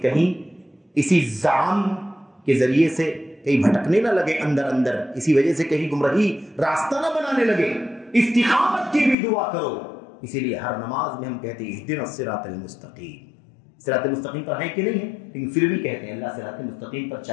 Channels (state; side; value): drops out; right; at 9.2 s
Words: کہیں اسی زعم کے ذریعے سے کہیں بھٹکنے نہ لگے اندر اندر، اسی وجہ سے کہیں گمراہی راستہ نہ بنانے لگے۔ استقامت کی بھی دعا کرو، اسی لیے ہر نماز میں ہم کہتے ہیں اہدنا الصراط المستقیم، صراط مستقیم پر ہے کہ نہیں ہے، لیکن پھر بھی کہتے ہیں اللہ صراط مستقیم پر